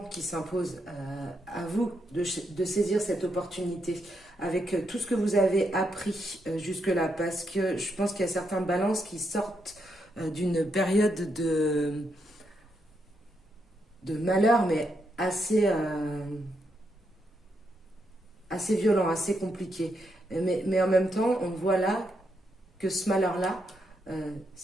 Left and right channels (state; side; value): normal; both; correlation 0.80